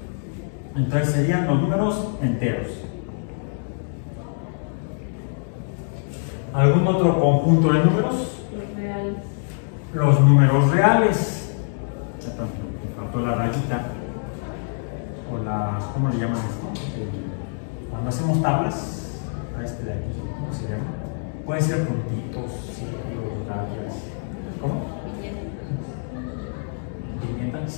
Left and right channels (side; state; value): right; silent; digital silence